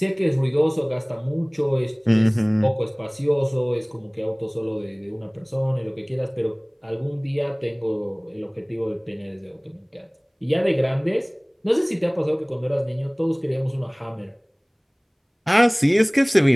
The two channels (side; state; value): both; identical; correlation 1.00